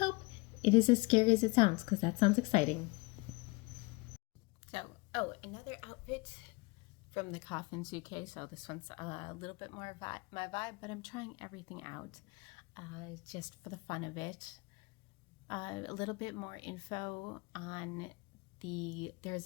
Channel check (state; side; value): quieter; right; 26.8 dB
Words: it is as scary as it sounds, because that sounds exciting. So, oh, another outfit from the coffin suitcase. So this one's a little bit more my vibe, but I'm trying everything out just for the fun of it. A little bit more info on there's